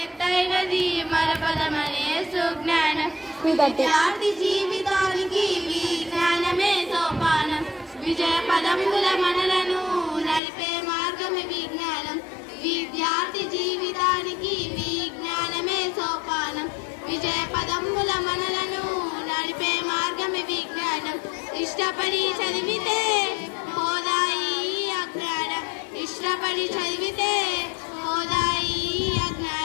మరపదమనే సుజ్ఞానం విద్యార్థి జీవితానికి విజ్ఞానమే సోపానం విజయ పదముల మనలను నడిపే మార్గమే విజ్ఞానం విద్యార్థి జీవితానికి విజ్ఞానమే సోపానం విజయ పదముల మనలను నడిపే మార్గమే విజ్ఞానం ఇష్టపడి చదివితే హోదాయి అజ్ఞానం ఇష్టపడి చదివితే హోదాయి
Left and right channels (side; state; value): right; drops out; at 10.4 s